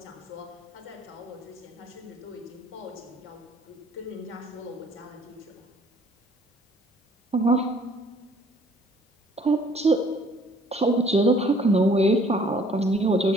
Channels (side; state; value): both; normal; correlation 0.58